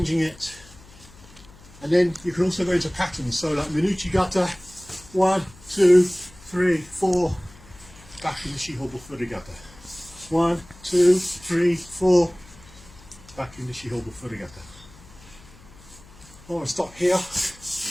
it. And then you can also go into patterns. So like Minuchigata, 1, 2, 3, 4, back into Shihobu Furygata. 1, 2, 3, 4, back into Shihobu Furygata. I want to stop here,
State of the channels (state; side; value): noise; left; hum, 22 dB below the sound